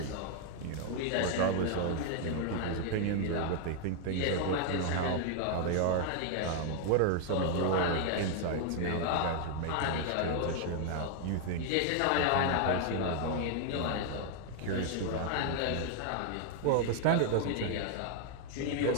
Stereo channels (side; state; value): both; different; correlation 0.00